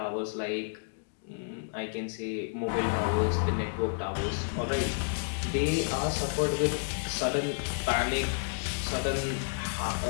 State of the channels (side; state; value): right; silent; digital silence